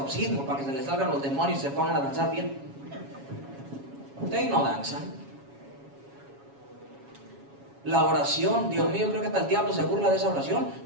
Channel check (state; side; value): late; left; 7.2 ms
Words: para que se les salgan los demonios y se pongan a danzar bien. Ustedes no danzan. La oración, Dios mío, creo que hasta el diablo se burla de esa oración.